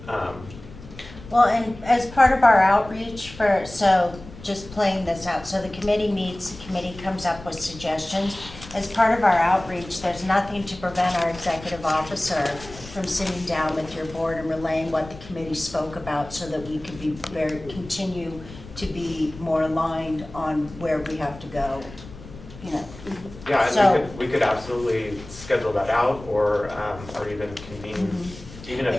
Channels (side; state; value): left; noise; rumble, 17 dB below the sound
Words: Well, and as part of our outreach so just playing this out, so the committee meets, the committee comes up with suggestions. As part of our outreach, there's nothing to prevent our executive officer from sitting down with your board and relaying what the committee spoke about, so that we could continue to be more aligned on where we have to go, you know. yeah, So- and we could absolutely schedule that out, or even convene, even